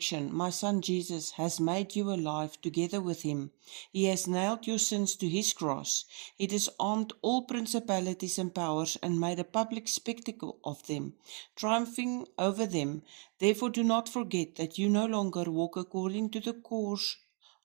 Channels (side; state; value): left; quieter; 38.0 dB